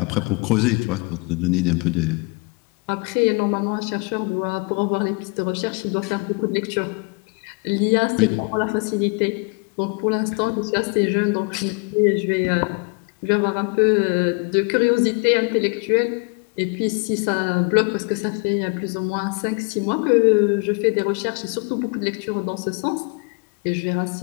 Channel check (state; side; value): quieter; right; 31.4 dB